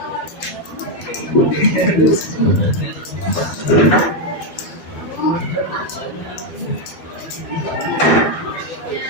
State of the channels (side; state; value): right; late; 12 ms